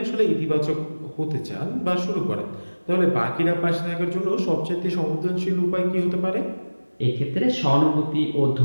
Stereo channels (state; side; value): inverted; both; correlation -1.00